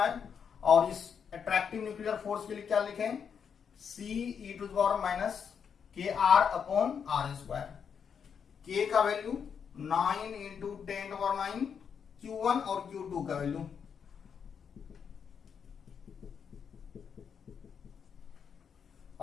और इस अट्रैक्टिव न्यूक्लियर फोर्स के लिए क्या लिखें, C e to the power minus K R upon R square. K का value 9 into 10 to power 9, Q1 और Q2 का वैल्यू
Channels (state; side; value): quieter; right; 7.0 dB